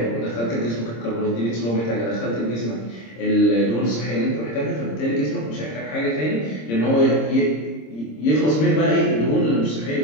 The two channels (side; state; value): right; late; 26 ms